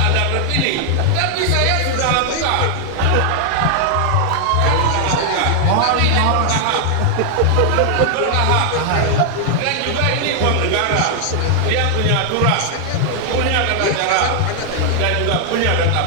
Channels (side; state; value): both; different; correlation 0.00